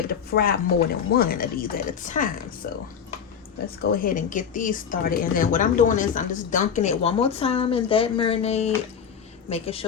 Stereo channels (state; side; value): quieter; right; 7.4 dB